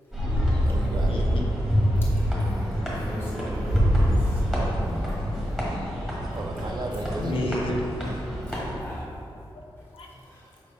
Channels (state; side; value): normal; both; correlation 0.87